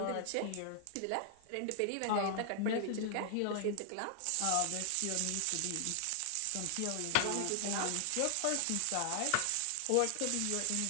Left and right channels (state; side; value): different; both; correlation 0.00